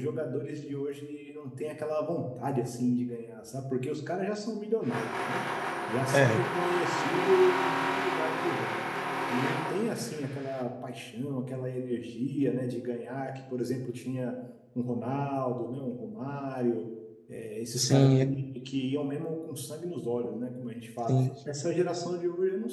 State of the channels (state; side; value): identical; both; correlation 1.00